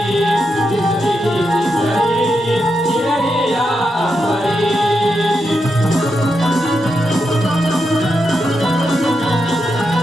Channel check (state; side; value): normal; both; correlation 0.85